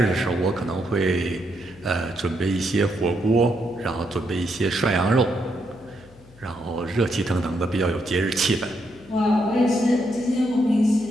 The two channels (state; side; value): noise; left; hum, 25 dB below the sound